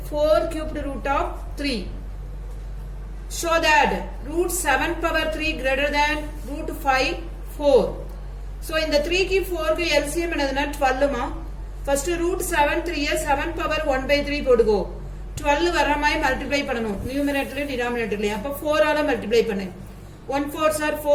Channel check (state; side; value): identical; both; correlation 1.00